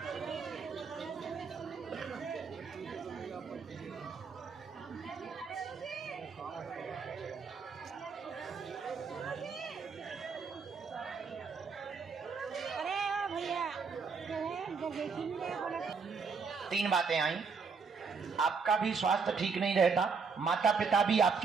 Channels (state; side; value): quieter; left; 5.3 dB